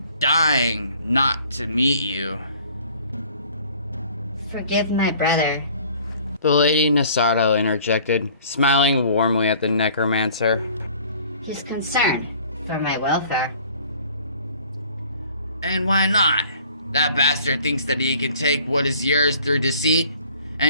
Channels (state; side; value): inverted; both; correlation -0.53